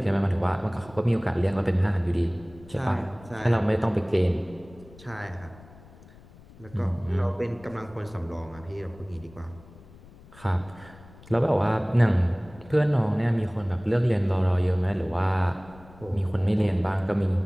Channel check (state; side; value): noise; left; rumble, 22 dB below the sound